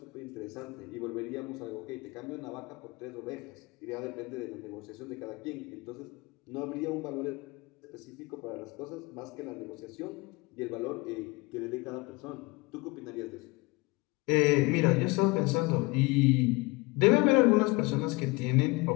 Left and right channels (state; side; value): quieter; right; 25.0 dB